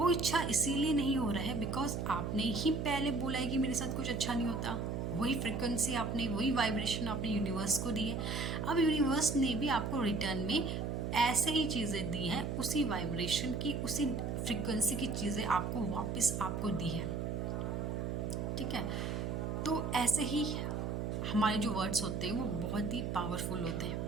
इच्छा इसीलिए नहीं हो रहा है बिकॉज आपने ही पहले बोला है कि मेरे साथ कुछ अच्छा नहीं होता। वही फ्रिक्वेंसी आपने, वही वाइब्रेशन आपने यूनिवर्स को दी है। अब यूनिवर्स ने भी आपको रिटर्न में ऐसे ही चीज़ें दी हैं, उसी वाइब्रेशन की, उसी फ्रिक्वेंसी की चीज़ें आपको वापस आपको दी है। ठीक है, तो ऐसे ही हमारे जो वर्ड्स होते हैं वो बहुत ही पावरफुल होते हैं।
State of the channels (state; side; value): noise; right; hum, 2 dB below the sound